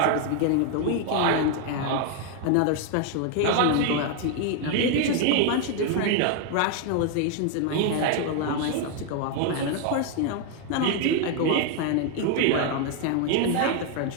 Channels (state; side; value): different; both; correlation 0.01